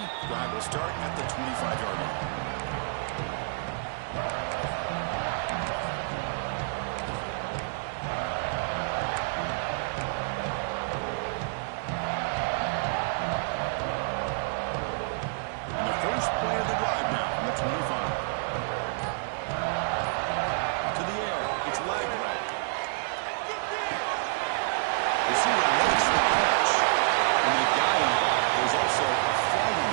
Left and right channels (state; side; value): silent; left; digital silence